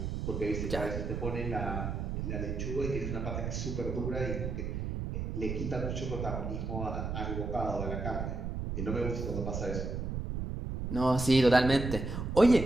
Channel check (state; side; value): noise; right; rumble, 3 dB below the sound